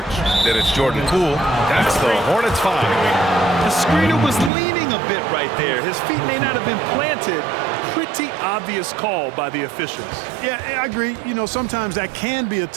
Then it's Jordan Poole. That's the Hornets 5. The screener was leaning a bit right there. His feet may not have been planted. Pretty obvious call by the officials. Yeah, I agree. You know, sometimes that can be a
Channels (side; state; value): left; drops out; at 4.5 s